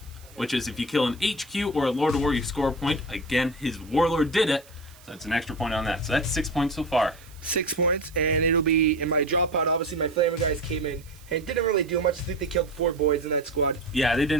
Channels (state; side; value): noise; right; hiss, 25 dB below the sound